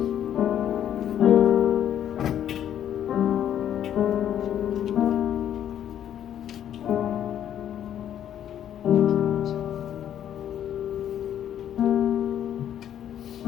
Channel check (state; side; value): quieter; right; 10.3 dB